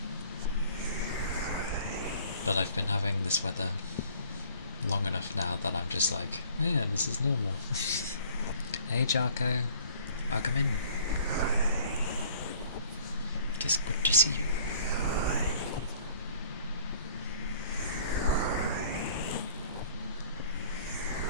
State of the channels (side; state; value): both; inverted; correlation -0.54